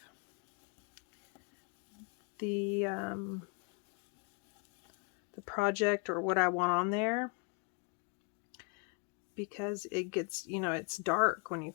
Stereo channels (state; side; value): quieter; right; 35.0 dB